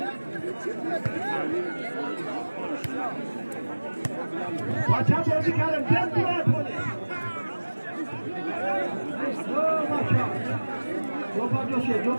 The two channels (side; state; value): both; inverted; correlation -1.00